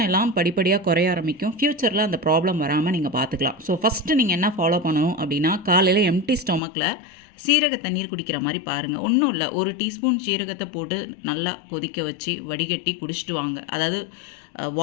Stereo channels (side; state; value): right; drops out; at 6.6 s